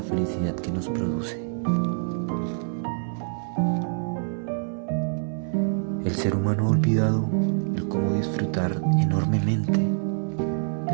felicidad que nos produce. El ser humano ha olvidado el cómo disfrutar enormemente de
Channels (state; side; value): silent; left; 61 dB below the other